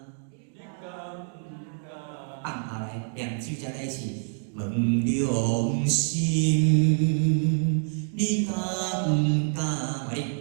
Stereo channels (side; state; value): left; silent; 60 dB below the other